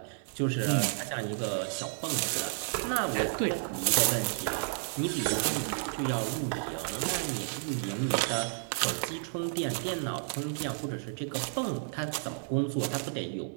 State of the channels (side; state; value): left; silent; digital silence